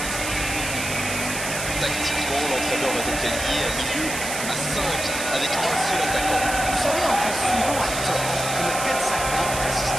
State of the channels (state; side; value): noise; right; hiss, 5 dB below the sound